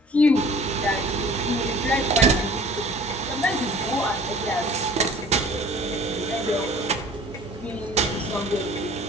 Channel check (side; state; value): both; normal; correlation 0.48